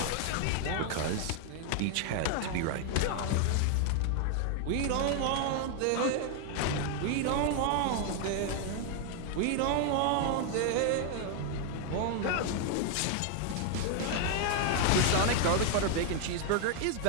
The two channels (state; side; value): different; both; correlation 0.00